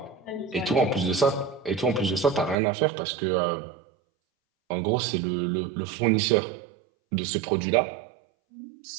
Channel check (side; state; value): left; drops out; at 2.6 s